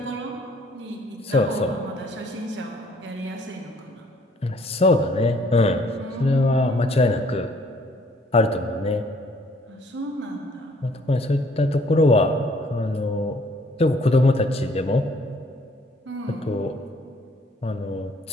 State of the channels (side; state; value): both; normal; correlation 0.61